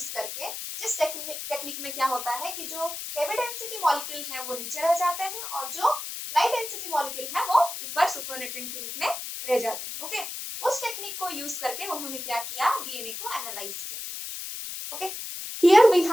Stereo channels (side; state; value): left; noise; hiss, 7 dB below the sound